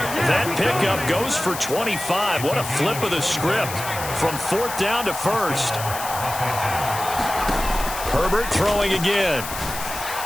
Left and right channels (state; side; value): noise; left; hiss, 8 dB below the sound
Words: That pickup goes for 25. What a flip of the script from 4th down to 1st. Herbert throwing again.